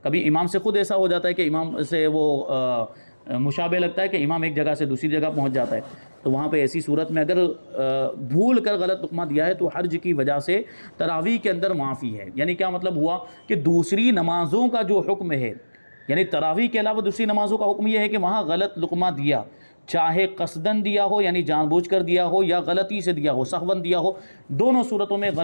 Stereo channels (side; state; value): both; inverted; correlation -1.00